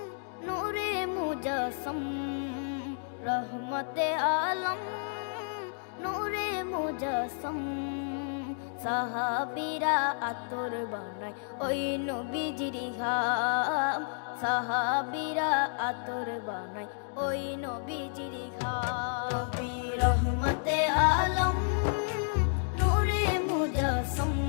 নূরে মুজাসম, রহমতে আলম নূরে মুজাসম। সাহাবীরা আতর বানায় ওই নবীজির ঘাম, সাহাবীরা আতর বানায় ওই নবীজির ঘাম। নবী রহমতে আলম নূরে মুজাসম,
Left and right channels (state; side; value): silent; right; 57 dB below the other